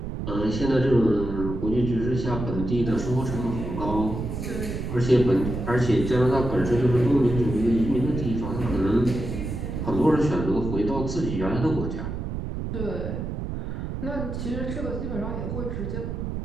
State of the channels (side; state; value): right; noise; rumble, 5 dB below the sound